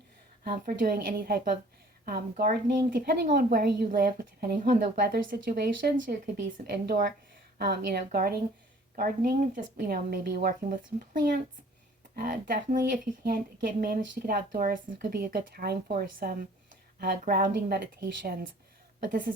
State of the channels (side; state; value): both; normal; correlation 0.53